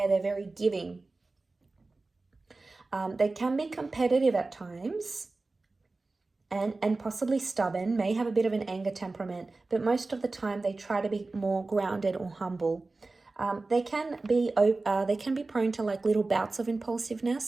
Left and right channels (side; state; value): left; quieter; 3.4 dB